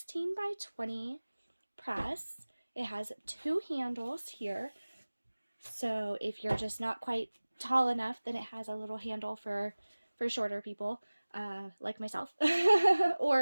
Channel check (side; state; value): both; inverted; correlation -1.00